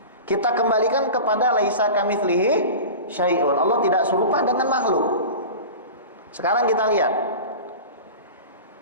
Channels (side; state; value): both; inverted; correlation -0.32